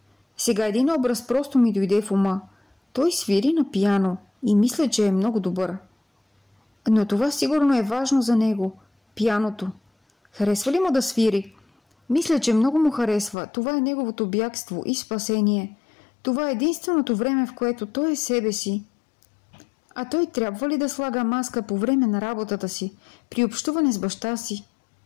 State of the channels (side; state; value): right; drops out; at 13.4 s